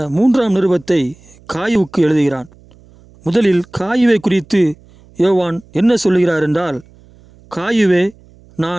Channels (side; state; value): right; noise; hum, 27 dB below the sound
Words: 3ஆம் நிருபத்தை காயுவுக்கு எழுதுகிறான். முதலில் காயுவை குறித்து யோவான் என்ன சொல்லுகிறார் என்றால், காயுவே,